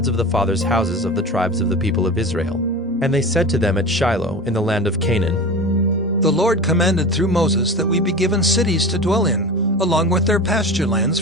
of the fathers' houses of the tribes of the people of Israel. And they said to them at Shiloh in the land of Canaan, The Lord commanded through Moses that we be given cities to dwell in, along with their pasture lands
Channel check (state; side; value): normal; both; correlation 0.30